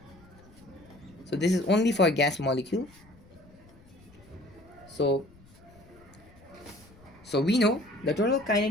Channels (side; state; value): left; noise; rumble, 25 dB below the sound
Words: so this is only for gas molecule. So we know the total